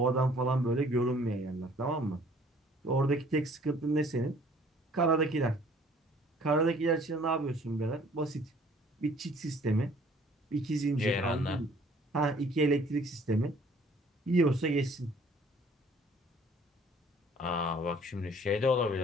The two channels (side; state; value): both; normal; correlation 0.56